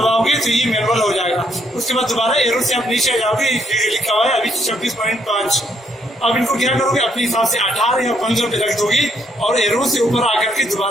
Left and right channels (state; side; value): normal; both; correlation 0.71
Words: तो ये मैनुअल हो जाएगा। उसके बाद दोबारा एरो से आप नीचे आ जाओगे, लिखा हुआ है अभी 26.5। अब इनको क्या करोगे, अपने हिसाब से 18 या 15 पे रख दोगे और एरो से ऊपर आकर के